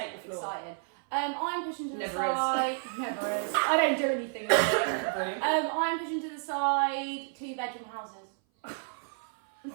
the floor. excited. I'm pushing to the Never side. Never is. I don't do anything. I'm pushing to the side 2-bedroom houses.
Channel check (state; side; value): silent; left; 56 dB below the other